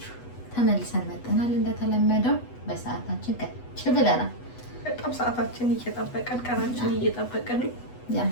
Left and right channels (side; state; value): right; late; 8.1 ms